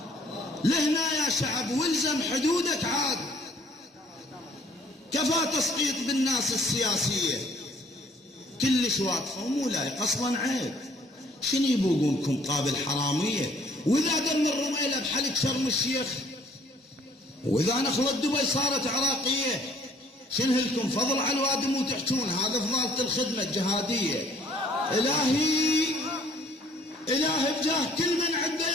لهنا يا شعب، والزم حدودك عاد. كفى تسقيط بالناس السياسية، كلش واقفة ومو لايق اصلا، عيب. شنو يبوقونكم قابل حرامية؟ واذا دم الرميلة بحلق شرم الشيخ، واذا نخلة دبي صارت عراقية، شنو لكم فضل على الوادم وتحجون هذا فضالة الخدمة الجهادية؟ إلهي بجاه كل من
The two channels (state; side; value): normal; both; correlation 0.59